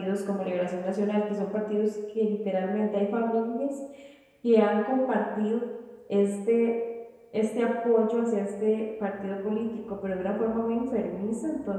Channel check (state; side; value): identical; both; correlation 1.00